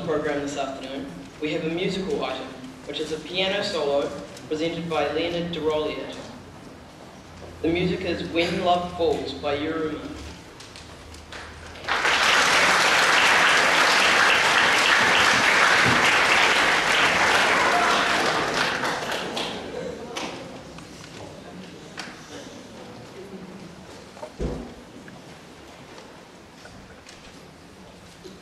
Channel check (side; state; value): both; identical; correlation 1.00